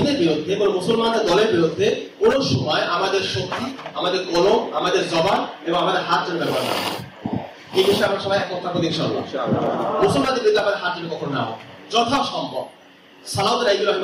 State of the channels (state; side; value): identical; both; correlation 1.00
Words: বিরুদ্ধে, কোন মুসলমানদের দলের বিরুদ্ধে কোন সময় আমাদের শক্তি, আমাদের কলম, আমাদের জবান এবং আমাদের হাত যেন ব্যবহার না হয়। এই বিষয়ে আমরা সবাই একমত থাকবো ইনশাআল্লাহ। মুসলমানদের বিরুদ্ধে আমাদের হাত যেন কখনো না হয়, যথাসম্ভব। সালাউদ্দিন আইয়ুবী